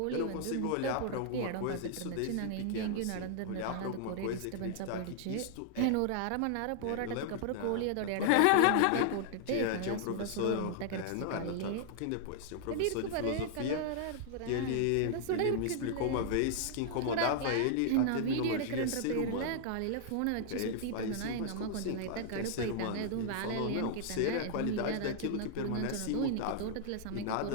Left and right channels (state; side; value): different; both; correlation -0.01